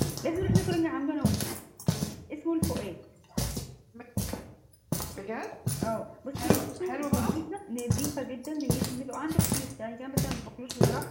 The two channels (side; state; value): both; identical; correlation 1.00